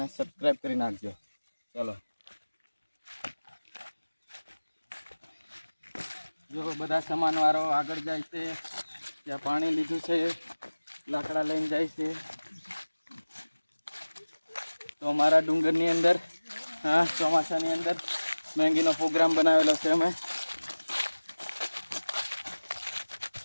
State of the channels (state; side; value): inverted; both; correlation -1.00